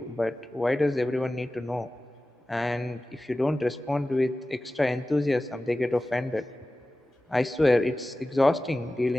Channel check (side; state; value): both; normal; correlation 0.95